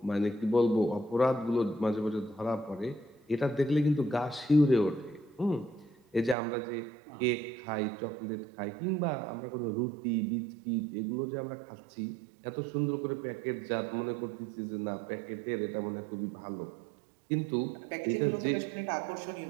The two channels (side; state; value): left; drops out; at 6.4 s